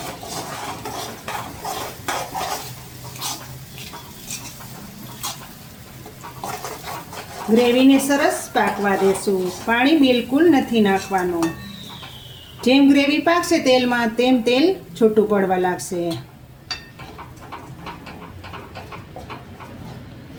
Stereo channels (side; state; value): both; identical; correlation 1.00